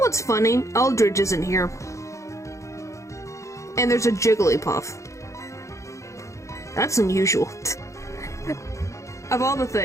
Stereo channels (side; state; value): right; late; 0.15 ms